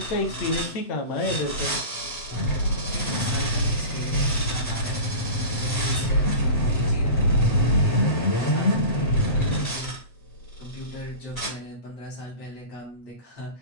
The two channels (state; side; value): late; right; 7.9 ms